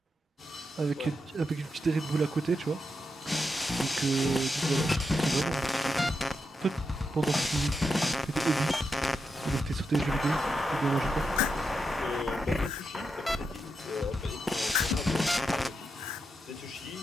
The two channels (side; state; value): both; normal; correlation 0.85